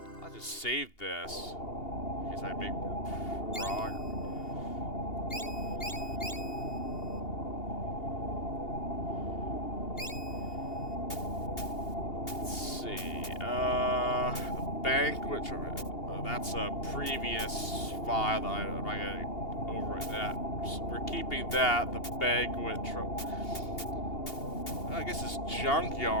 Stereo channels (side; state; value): right; late; 2.8 ms